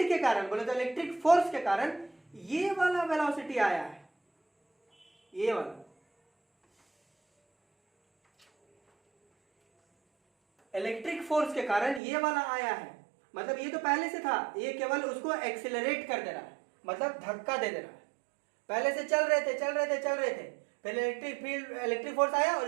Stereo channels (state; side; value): drops out; left; at 12.0 s